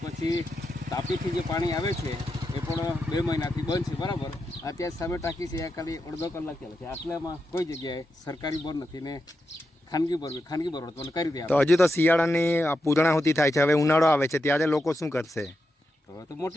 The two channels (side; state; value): both; normal; correlation 0.87